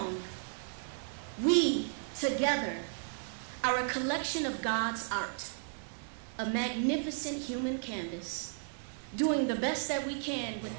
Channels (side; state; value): left; silent; digital silence